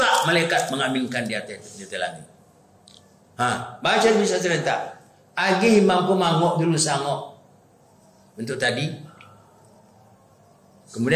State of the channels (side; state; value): both; identical; correlation 1.00